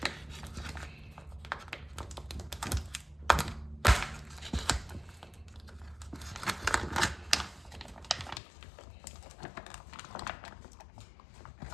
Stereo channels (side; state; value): right; drops out; at 8.4 s